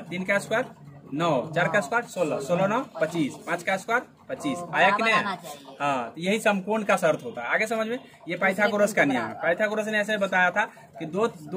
3 का स्क्वायर 9, 4 का स्क्वायर 16, 16 9 25, 5 का स्क्वायर 25 आया कि नहीं? हाँ, तो यही समकोण का शर्त होता है। आगे समझ में, ये पाइथागोरस का नियम है। पाइथागोरस ने ऐसे बताया था कि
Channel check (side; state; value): both; identical; correlation 1.00